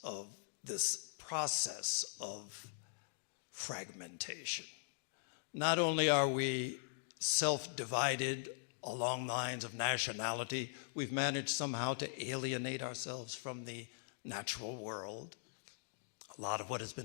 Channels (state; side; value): silent; right; digital silence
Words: of this process of fragmentation. Not only are we self-divided along lines of nationality, we've managed somehow to alienate ourselves from the natural world. A lot of what has